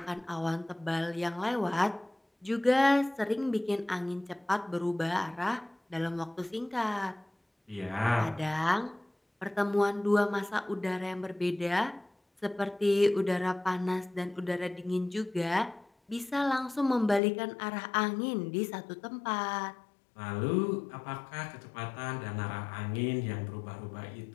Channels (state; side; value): drops out; right; at 17.2 s